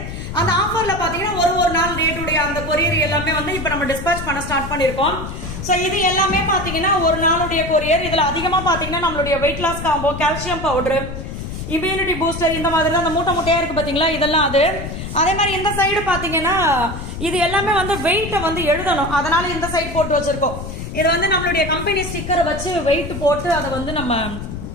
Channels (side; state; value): left; noise; rumble, 8 dB below the sound